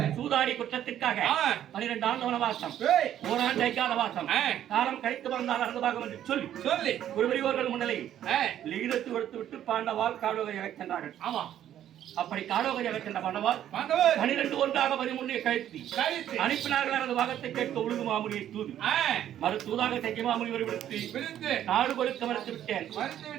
சூதாடி குற்றத்திற்காக 12 ஆண்டு வனவாசம் ஓராண்டு ஐக்காத வாசம் காலம் கழித்து வந்தால் அறந்தபாகம் என்று சொல்லி சொல்லி குருபரியோர்கள் முன்னிலையில் லிகிதத்து கொடுத்து விட்டு பாண்டவால் காடோகையாக சென்றார்கள் ஆமா அப்படி காடோகையாக சென்ற பாண்டவால் 12 ஒன்றாக 13 கழித்து அனுப்பினார்கள் அந்த பாகத்தை கேட்க உழுகு மாமுனியை தூது மறு தூதாக தைக்க மாமுனிவரை விடுத்து நாடு கொடுக்க மறுத்து விட்டேன்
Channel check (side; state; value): left; quieter; 11.1 dB